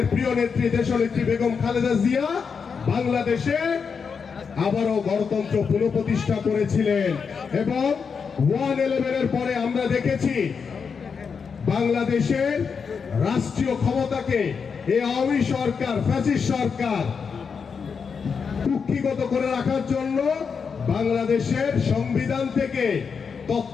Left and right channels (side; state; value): right; quieter; 5.9 dB